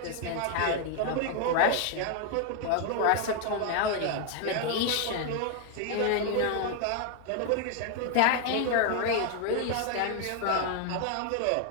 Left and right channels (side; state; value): both; different; correlation 0.00